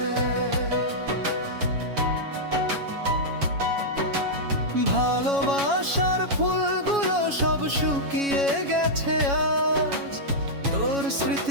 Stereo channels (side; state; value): left; late; 7.2 ms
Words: ভালোবাসার ফুলগুলো সব শুকিয়ে গেছে আজ, তোর